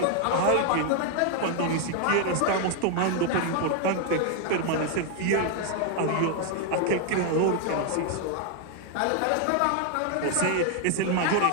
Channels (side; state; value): both; different; correlation 0.00